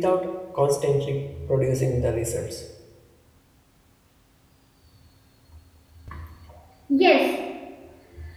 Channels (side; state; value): both; identical; correlation 1.00